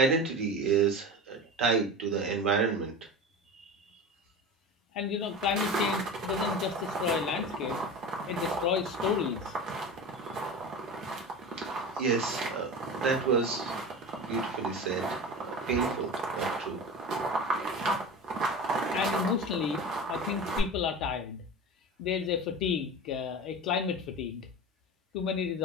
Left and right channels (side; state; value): both; normal; correlation 0.30